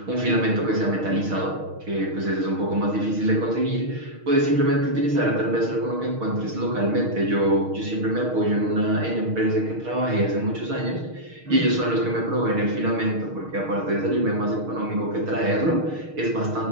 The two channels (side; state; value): left; late; 6.4 ms